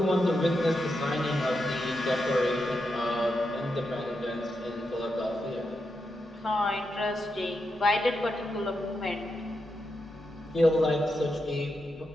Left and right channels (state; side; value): normal; both; correlation 0.85